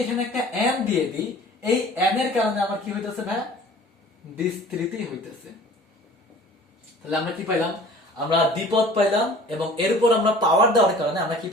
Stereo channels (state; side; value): normal; both; correlation 0.47